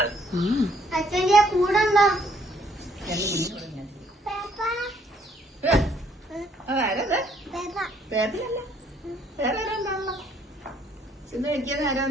കൂടെ പേപ്പിലല്ല, വേറെ ആരാണല്ലോ ചെന്ന് കഴിക്കാൻ.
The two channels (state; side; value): normal; both; correlation 0.66